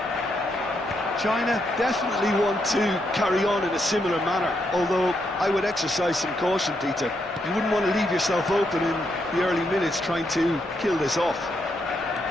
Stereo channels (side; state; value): both; normal; correlation 0.79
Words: China definitely want to carry on in a similar manner, although I would exercise some caution, Peter. You wouldn't want to leave yourself open in the early minutes trying to kill this off.